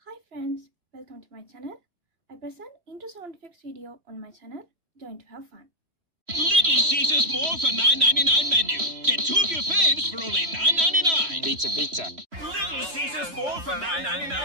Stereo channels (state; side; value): late; left; 3.0 ms